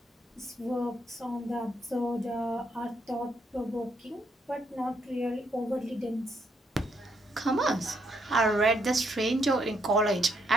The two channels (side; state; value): both; normal; correlation 0.74